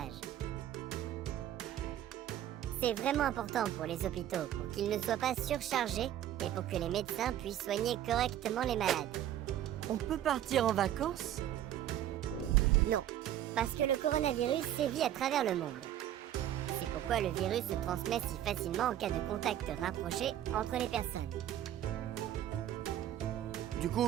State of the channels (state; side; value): quieter; left; 11.8 dB